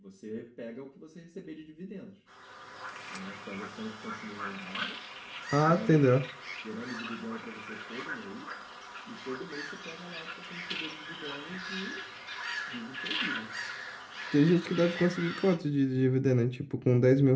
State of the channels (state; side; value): identical; both; correlation 1.00